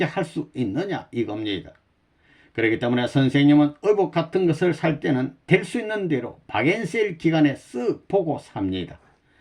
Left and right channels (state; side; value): identical; both; correlation 1.00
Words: 할 수 있느냐 이겁니다. 그렇기 때문에 선생님은 의복 같은 것을 살 때는 될 수 있는 대로 박앤세일 기간에 쓱 보고 삽니다.